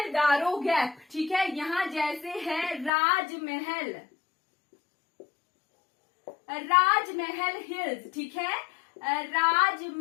गारो गैप। ठीक है, यहाँ जैसे है राजमहल हिल्स। ठीक है,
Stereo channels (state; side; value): drops out; right; at 2.9 s